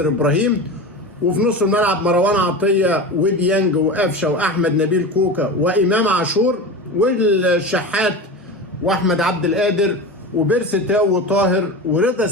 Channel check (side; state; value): both; normal; correlation 0.27